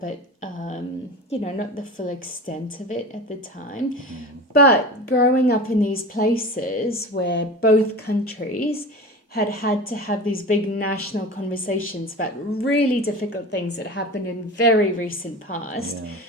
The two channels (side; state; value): both; normal; correlation 0.32